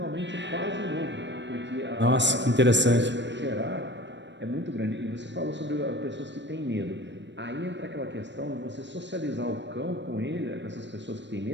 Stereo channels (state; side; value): late; left; 0.53 ms